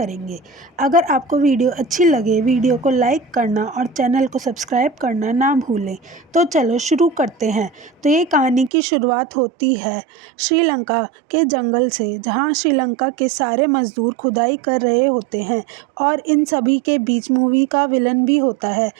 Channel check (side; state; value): left; drops out; at 8.7 s